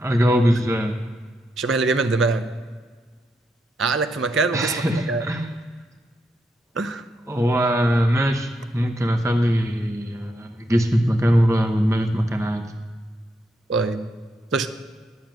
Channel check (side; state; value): both; normal; correlation 0.81